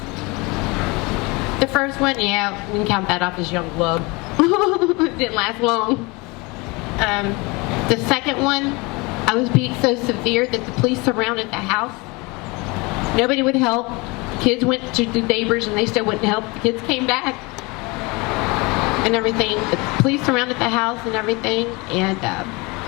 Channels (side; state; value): right; quieter; 26.1 dB